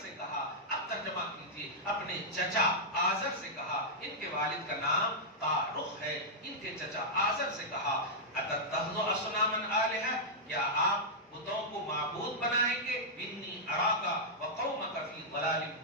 سے کہا، اب ترجمہ کیجئے، اپنے چچا آزر سے کہا، ان کے والد کا نام تارخ ہے، ان کے چچا آزر سے کہا اتتخذوا اصناما آلہہ، کیا آپ بتوں کو معبود بنائیں گے؟ انی اراک وقومک فی ضلال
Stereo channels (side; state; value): both; normal; correlation -0.08